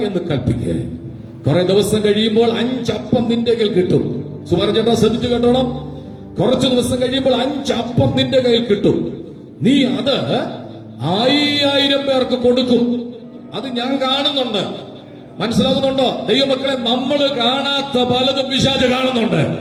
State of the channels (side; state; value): both; identical; correlation 1.00